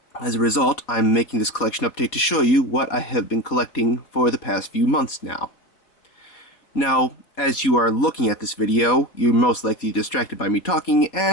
as a result, I'm making this collection update to show you what I have been collecting for the past few months now. Now, as you are looking at this video, you're most likely distracted by me talking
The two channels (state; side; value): late; right; 4.3 ms